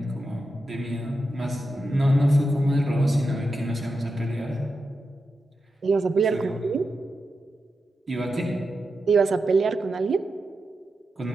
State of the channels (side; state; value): both; normal; correlation 0.89